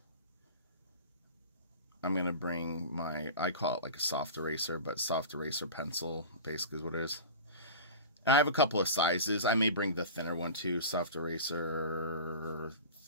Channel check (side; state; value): both; inverted; correlation -0.34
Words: I'm going to bring I call it like a soft eraser, but soft eraser pencil basically is what it is. And I have a couple of sizes. I may bring the thinner one too, soft eraser,